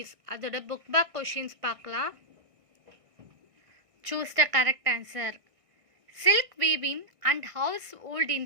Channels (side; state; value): left; late; 1.6 ms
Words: அதோட book back questions பார்க்கலாம். Choose the correct answer. Silk weaving and household